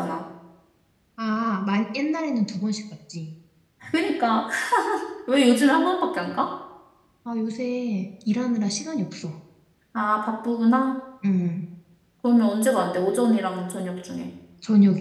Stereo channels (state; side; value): identical; both; correlation 1.00